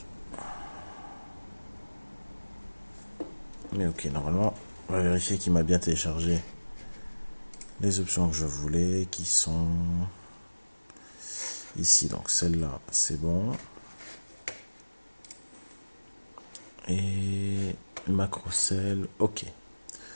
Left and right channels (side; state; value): both; inverted; correlation -1.00